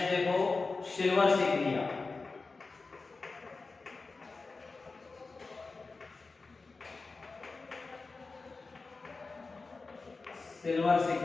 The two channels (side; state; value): right; quieter; 4.0 dB